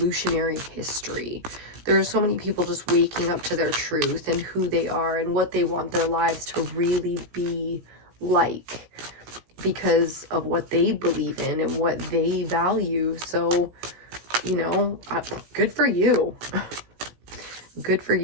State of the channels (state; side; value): late; left; 17 ms